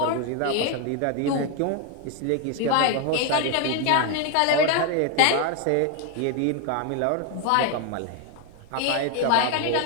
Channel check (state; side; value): different; both; correlation 0.01